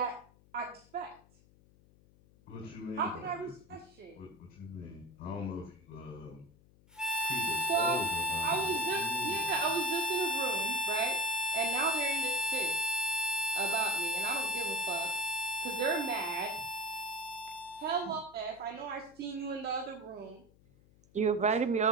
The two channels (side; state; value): left; noise; hum, 28 dB below the sound